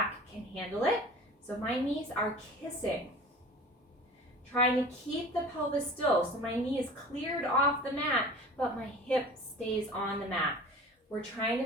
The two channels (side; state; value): both; normal; correlation 0.40